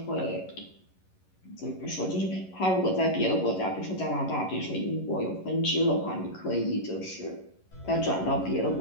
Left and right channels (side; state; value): right; late; 11 ms